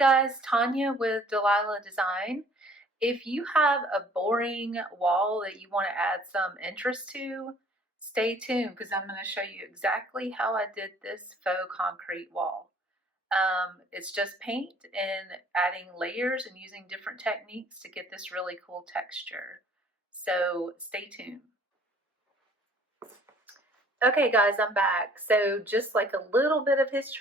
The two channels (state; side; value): normal; both; correlation 0.55